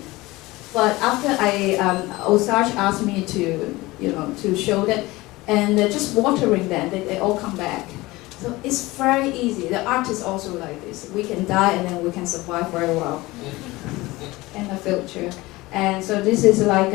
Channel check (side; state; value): right; quieter; 20.3 dB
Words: but after Osage asked me to show that, and just watering them, they all come back. So it's very easy. The art is also like this. We can die and then we can survive very well in the future. And so this is like